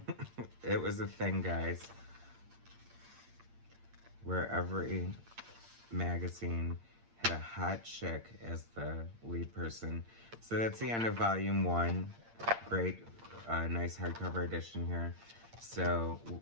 It was a thing, guys, where every magazine had a hot chick as the lead person. So that's the end of volume 1. Great, nice hardcover edition here. So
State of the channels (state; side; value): late; left; 8.7 ms